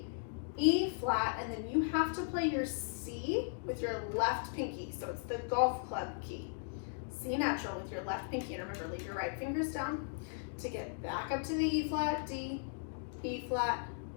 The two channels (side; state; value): right; silent; digital silence